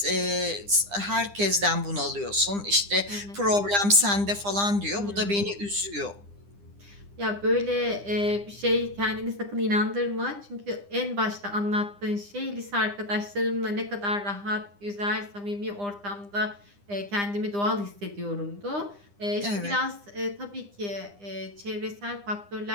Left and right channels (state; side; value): late; left; 9.9 ms